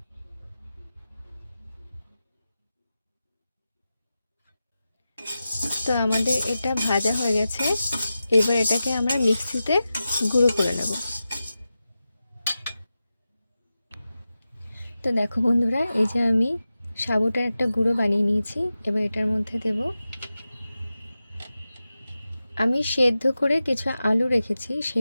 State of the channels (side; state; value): both; inverted; correlation -0.93